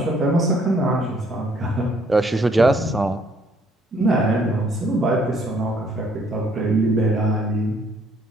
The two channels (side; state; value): both; normal; correlation 0.64